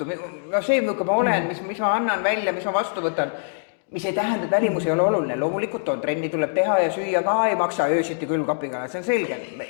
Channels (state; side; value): silent; right; digital silence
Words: see, milline ma olen, mis ma annan välja, mis ma vastu võtan, mis ei tähenda, et välimus ei ole oluline. Loomulikult on, trenni tuleb teha ja süüa ka ei maksa öösiti külmkapiga, see on selge.